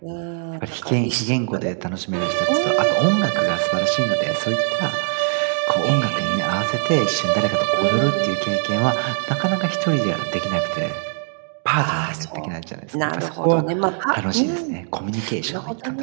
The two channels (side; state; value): left; silent; 65 dB below the other